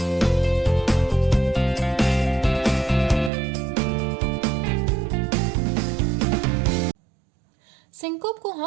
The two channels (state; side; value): drops out; left; at 3.3 s